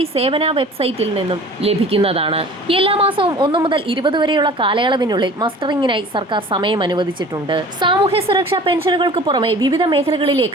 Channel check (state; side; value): normal; both; correlation 0.44